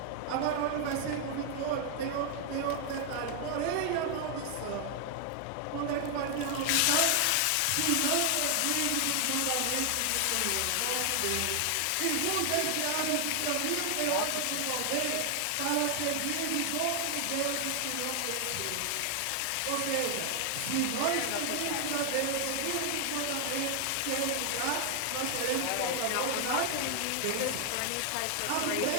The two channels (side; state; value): both; different; correlation 0.00